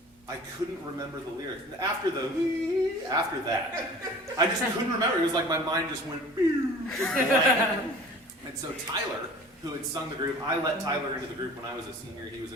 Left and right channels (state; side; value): normal; both; correlation 0.44